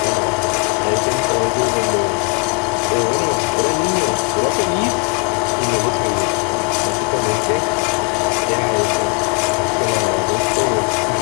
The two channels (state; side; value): quieter; right; 33.6 dB